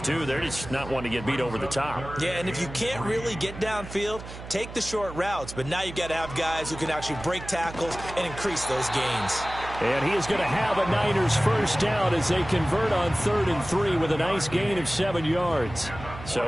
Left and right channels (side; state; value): right; noise; hum, 12 dB below the sound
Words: too. They're just not wanting to get beat over the top. Yeah, and if you can't really get downfield, take the short routes. But now you've got to have guys who can actually break tackles and increase those gains. And he is going to have a Niners first down as they convert on 3rd and 3 with a nice gain of 7 yards.